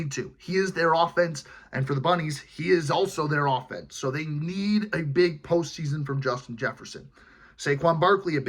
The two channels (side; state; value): both; identical; correlation 1.00